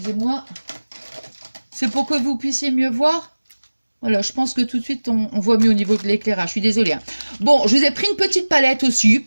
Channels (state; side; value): inverted; both; correlation -1.00